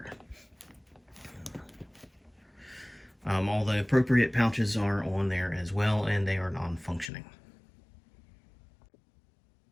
All the appropriate pouches are on there as well, and they are non-functioning.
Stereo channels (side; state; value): right; drops out; at 7.1 s